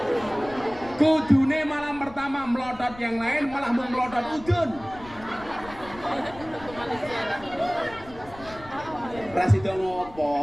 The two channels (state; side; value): noise; left; rumble, 19 dB below the sound